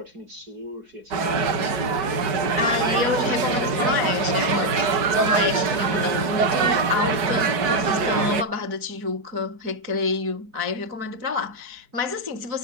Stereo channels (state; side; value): late; left; 4.7 ms